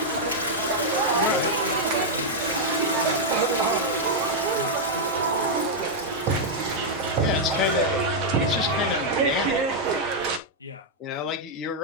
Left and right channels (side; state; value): both; normal; correlation -0.03